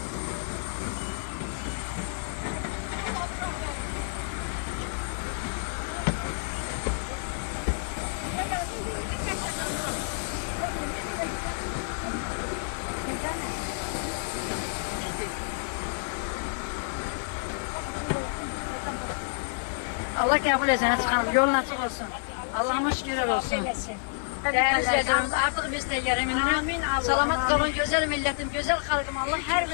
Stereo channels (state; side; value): silent; right; digital silence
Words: Allah kabul etsin. Hadi çıkalım. Yolun açık olsun. Allah'ımız şükürler olsun. Değerli izleyicilerimiz, artık biz de yeriminin salamat kalın, güzel milletim, güzel halkım. Allah her